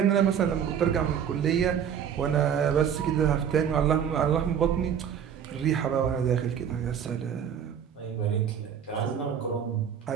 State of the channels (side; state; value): left; quieter; 8.3 dB